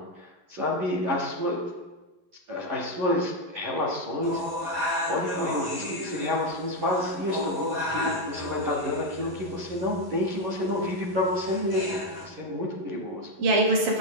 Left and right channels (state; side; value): late; left; 11 ms